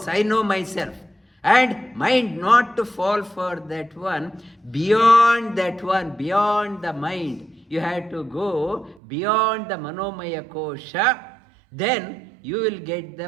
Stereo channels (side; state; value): left; drops out; at 9.0 s